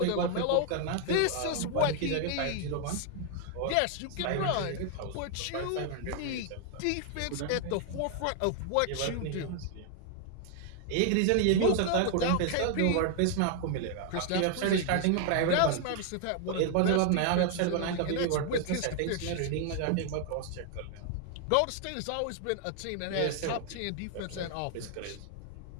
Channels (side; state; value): both; different; correlation 0.00